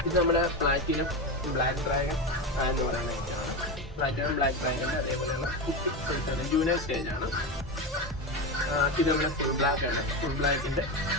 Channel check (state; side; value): normal; both; correlation 0.18